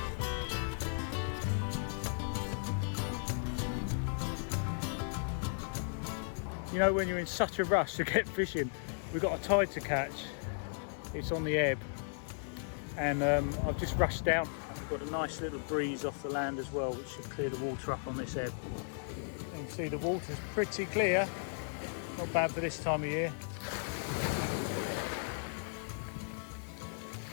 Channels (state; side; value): silent; right; digital silence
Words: You know, when you're in such a rush to get fishing, we've got a tide to catch. It's on the ebb, and I've just rushed down. We've got a nice little breeze off the land as well, which should clear the water up on this ebb. You can see the water's pretty clear. Not bad for this time of year.